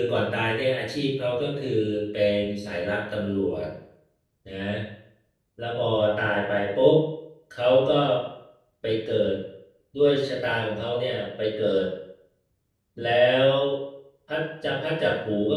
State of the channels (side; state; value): both; identical; correlation 1.00